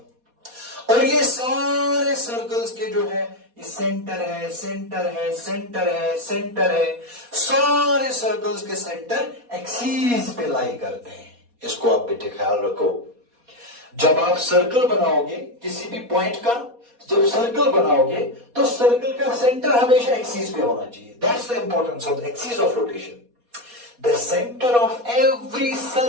और ये सारे सर्कल्स के जो है, ये सेंटर है, सेंटर है, सेंटर है, सेंटर है। सारे सर्कल्स के सेंटर एक्सीस पे लाई करते हैं। इसको आप बेटे ख्याल रखो। जब आप सर्कल बनाओगे किसी भी पॉइंट का, जब सर्कल बनाओगे तो सर्कल का सेंटर हमेशा एक्सीस पे होना चाहिए। That's the importance of the axis of rotation. The centre of every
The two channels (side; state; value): left; late; 4.2 ms